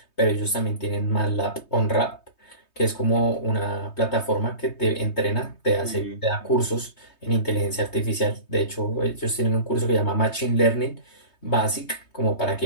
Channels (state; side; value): late; right; 3.2 ms